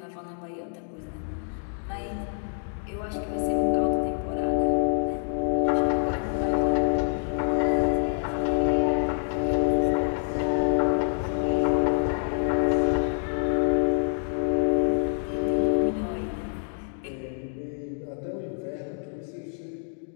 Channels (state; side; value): silent; right; digital silence